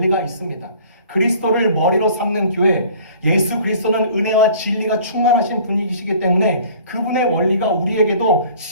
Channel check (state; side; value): inverted; both; correlation -0.50